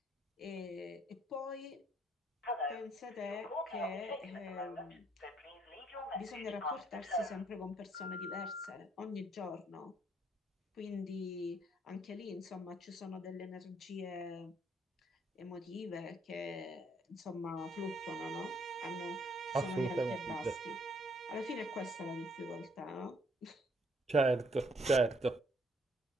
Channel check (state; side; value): normal; both; correlation 0.66